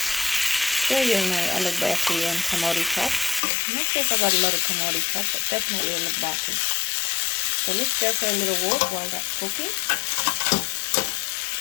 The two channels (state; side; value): drops out; right; at 3.4 s